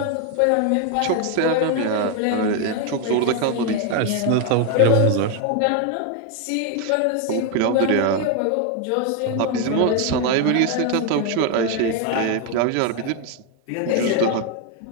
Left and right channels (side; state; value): both; different; correlation 0.01